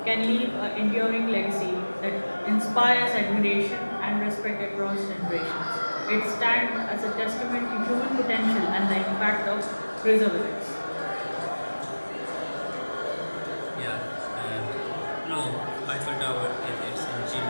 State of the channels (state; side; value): inverted; both; correlation -1.00